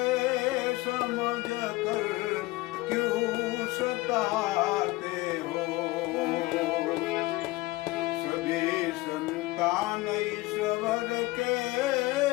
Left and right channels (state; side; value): quieter; right; 20.4 dB